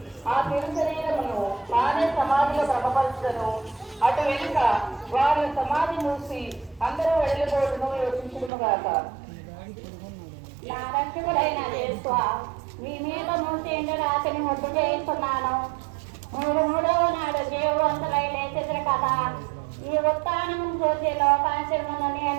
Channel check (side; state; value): left; drops out; at 8.5 s